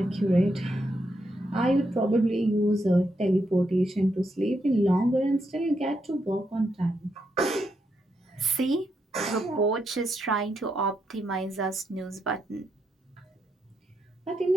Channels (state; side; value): normal; both; correlation 0.80